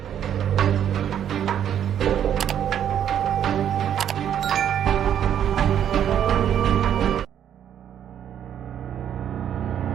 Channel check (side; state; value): left; quieter; 9.7 dB